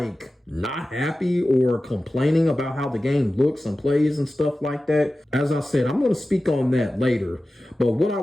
not happy or complaining about how the game looks and plays and stuff like that. As I said, I'm going to speak on that later. But what I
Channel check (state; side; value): normal; both; correlation 0.95